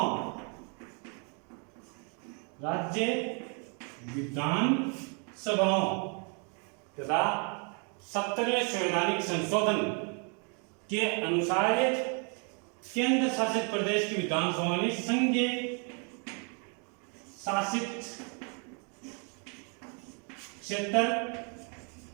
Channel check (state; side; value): quieter; left; 37.7 dB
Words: राज्य विधानसभाओं तथा 70वें संवैधानिक संशोधन के अनुसार केंद्र शासित प्रदेश की विधानसभा ने संघीय शासित क्षेत्र